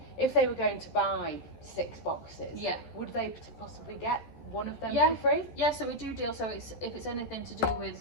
If they were going to buy 6 boxes, would they possibly get one of them Yeah. for free? Yeah, so we do deal. So if it's anything to do with,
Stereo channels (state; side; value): late; right; 13 ms